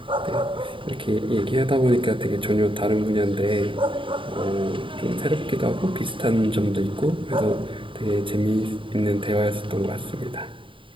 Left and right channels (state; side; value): late; left; 0.25 ms